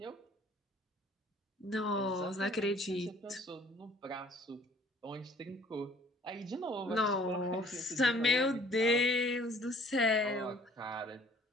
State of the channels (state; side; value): normal; both; correlation 0.56